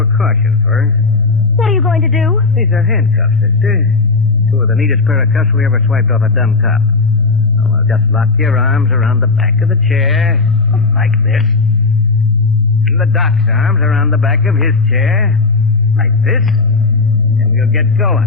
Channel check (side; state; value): right; quieter; 3.9 dB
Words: first. What are you going to do? These are handcuffs, sister. 2 of the neatest pair of cuffs we ever swiped off a dumb cop. Now, well, just lock your arms around the back of the chair, like this. And the doc's arms around the back of his chair, like this. And we'll get